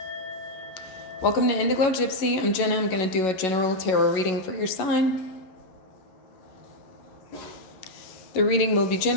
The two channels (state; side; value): late; right; 11 ms